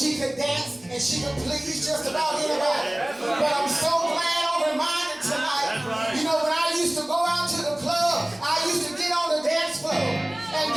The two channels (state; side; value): noise; right; rumble, 30 dB below the sound